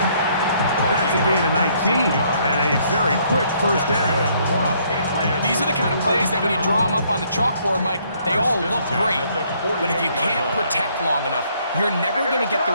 That's a gain of 19 and a very quick first down. These are the kind of plays that when you draw them up on the chalkboard, Mike, they all look great. But if you can't protect long enough, you're never going to get the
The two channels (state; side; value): inverted; both; correlation -0.66